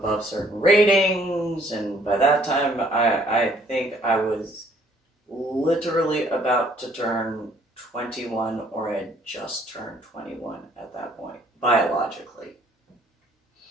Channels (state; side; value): normal; both; correlation 0.62